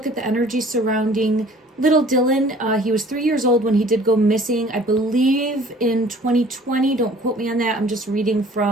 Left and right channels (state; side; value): normal; both; correlation 0.51